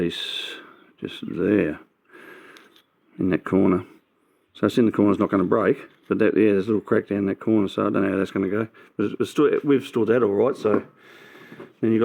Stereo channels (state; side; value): identical; both; correlation 1.00